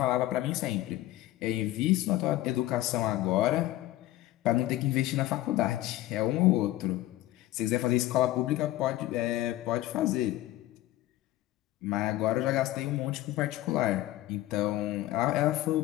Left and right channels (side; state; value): right; quieter; 15.7 dB